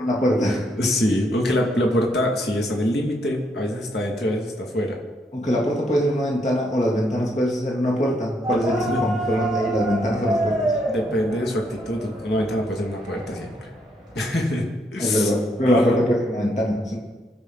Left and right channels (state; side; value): normal; both; correlation 0.74